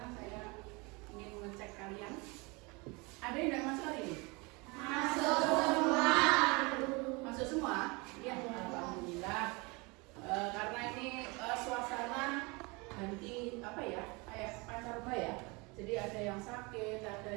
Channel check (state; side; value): quieter; left; 27.3 dB